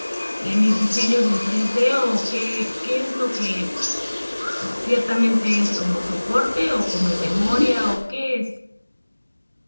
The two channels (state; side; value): inverted; both; correlation -1.00